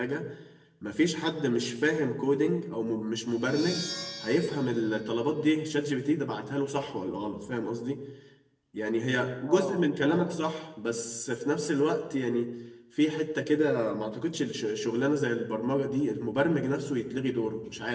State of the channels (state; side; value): identical; both; correlation 1.00